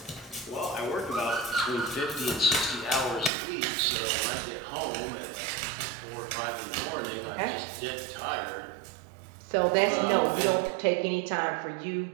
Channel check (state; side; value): drops out; left; at 3.3 s